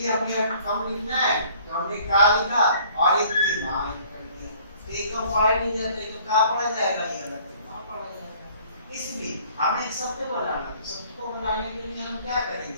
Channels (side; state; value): both; inverted; correlation -0.56